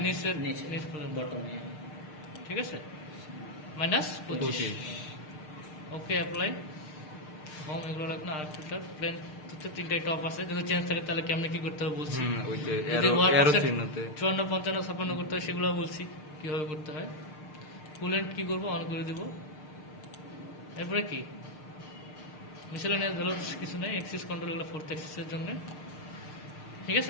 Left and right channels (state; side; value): late; right; 6.6 ms